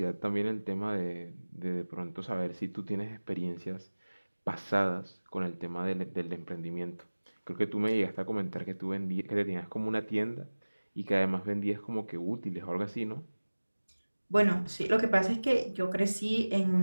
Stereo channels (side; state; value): both; inverted; correlation -1.00